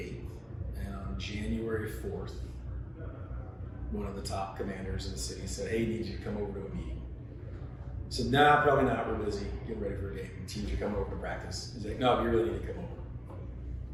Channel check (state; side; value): identical; both; correlation 1.00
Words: And on January 4th, one of the top commanders in the city said, "Hey, need you to come over to a meeting." I said, "Nah, probably not. We're busy getting ready for a game. Teams are coming over to practice." He's like, "No, you really need to come over."